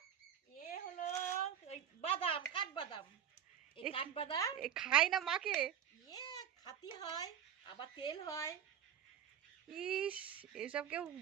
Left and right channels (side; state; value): left; quieter; 9.1 dB